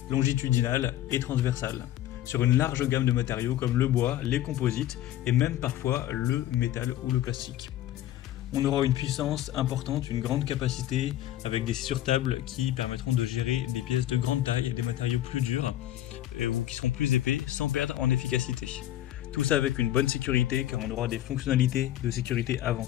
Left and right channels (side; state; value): right; quieter; 13.1 dB